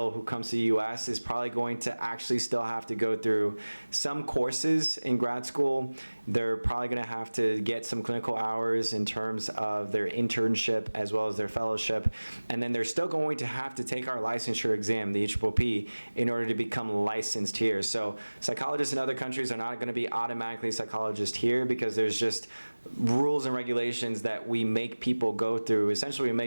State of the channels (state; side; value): inverted; both; correlation -1.00